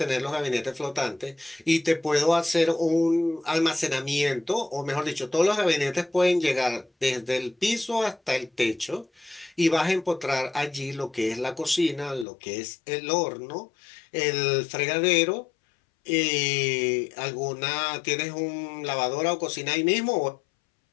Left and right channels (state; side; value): drops out; right; at 12.2 s